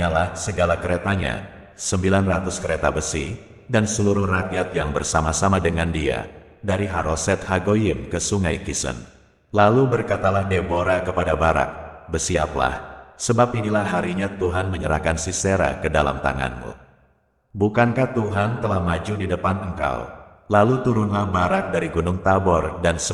segala keretanya, 900 kereta besi, dan seluruh rakyat yang bersama-sama dengan dia, dari Haroset Hagoyim ke sungai Kisen. Lalu berkatalah Deborah kepada Barak, "Bersiaplah, sebab inilah harinya Tuhan menyerahkan Sisera ke dalam tanganmu. Bukankah Tuhan telah maju di depan engkau?" Lalu turunlah Barak dari Gunung Tabor dan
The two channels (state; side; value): identical; both; correlation 1.00